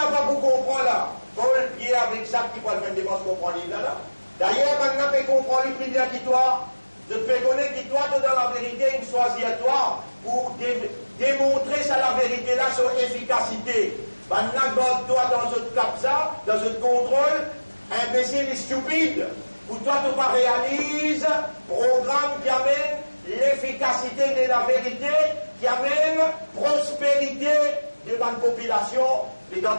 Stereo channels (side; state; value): both; inverted; correlation -1.00